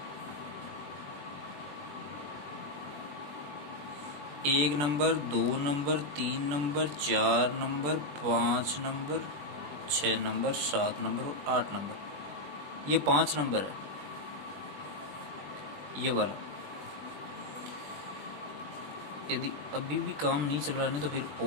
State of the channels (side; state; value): left; late; 20 ms